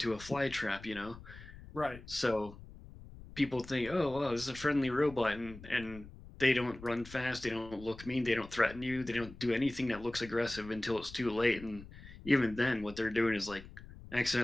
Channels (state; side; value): noise; left; rumble, 17 dB below the sound